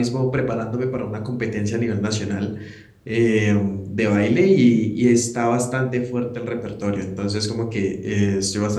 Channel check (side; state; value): both; identical; correlation 1.00